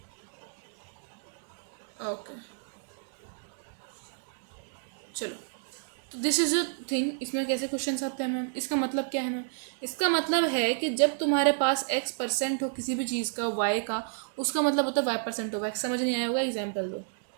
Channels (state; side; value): silent; left; digital silence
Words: ओके चलो, तो दिस इज अ थिंग, इसमें कैसे क्वेश्चंस आते हैं मैम, इसका मतलब क्या है मैम, इसका मतलब है कि जब तुम्हारे पास x% हो किसी भी चीज़ का, y का, उसका मतलब होता है y% ऑफ x। समझ नहीं आया होगा, एग्जाम्पल दो।